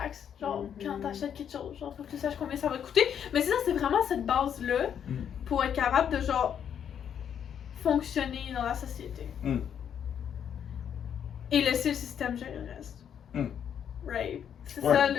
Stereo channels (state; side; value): quieter; right; 8.6 dB